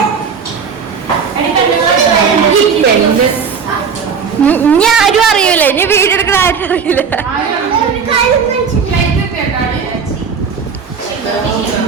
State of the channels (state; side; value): quieter; left; 6.1 dB